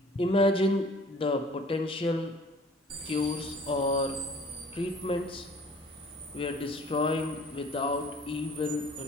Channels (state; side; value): normal; both; correlation 0.51